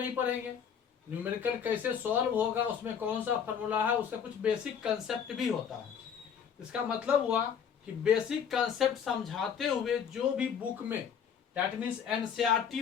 पढ़ेंगे, न्यूमेरिकल कैसे सॉल्व होगा, उसमें कौन सा फॉर्मूला है, उसका कुछ बेसिक कंसेप्ट भी होता है। इसका मतलब हुआ कि बेसिक कंसेप्ट समझाते हुए जो भी बुक में, दैट मीन्स एनसीईआरटी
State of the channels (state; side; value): quieter; right; 7.6 dB